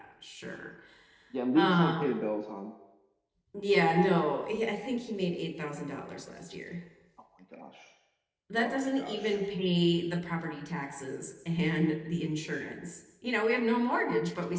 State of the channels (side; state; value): both; identical; correlation 1.00